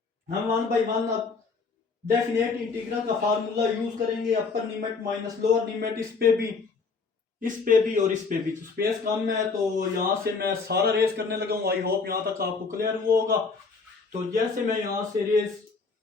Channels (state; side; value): quieter; right; 4.6 dB